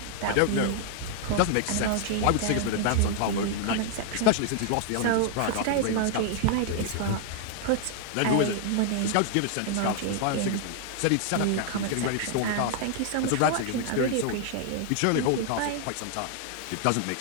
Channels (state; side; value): different; both; correlation 0.00